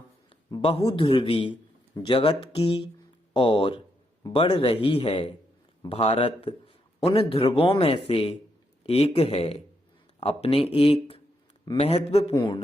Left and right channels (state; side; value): normal; both; correlation 0.79